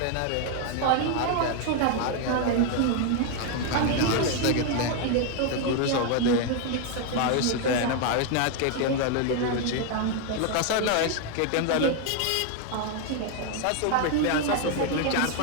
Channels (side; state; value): both; different; correlation 0.01